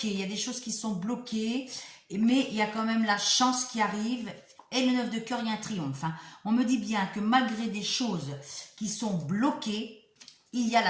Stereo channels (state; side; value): identical; both; correlation 1.00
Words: Il y a des choses qui sont bloquées, mais il y a quand même la chance qui arrive. Et le 9 de cœur, il y a un triomphe, hein. On me dit bien que malgré des choses qui sont bloquées, il y a